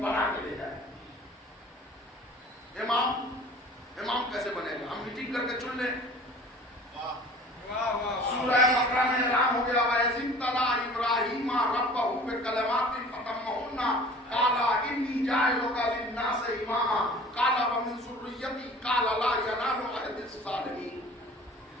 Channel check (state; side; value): normal; both; correlation 0.45